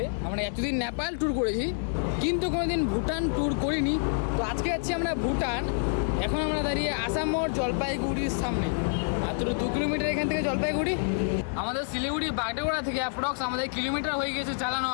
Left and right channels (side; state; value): right; silent; 59 dB below the other